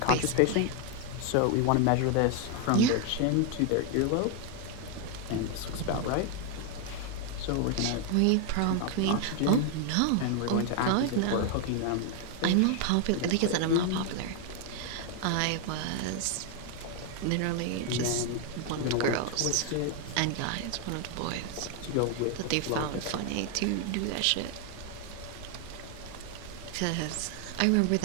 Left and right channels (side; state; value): both; different; correlation 0.01